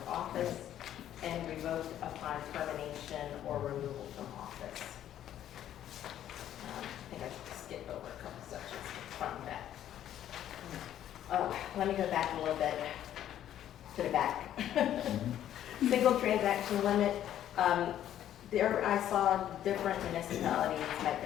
office and revoked upon termination or removal from office. I think I should skip over a couple sections from that. Let me go back a little bit to the back. Single transaction limit. There I saw different municipalities had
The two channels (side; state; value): right; quieter; 11.3 dB